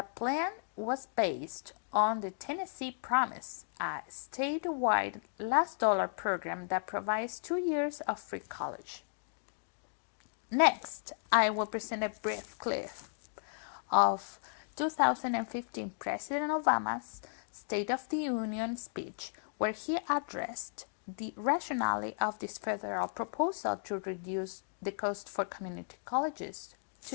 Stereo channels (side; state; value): right; silent; digital silence